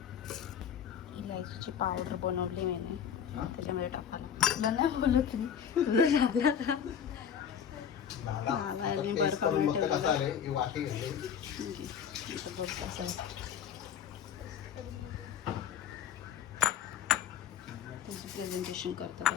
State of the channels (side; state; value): right; quieter; 8.3 dB